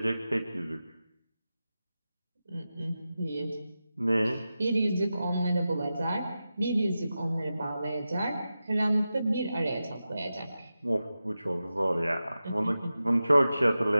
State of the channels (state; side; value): inverted; both; correlation -0.93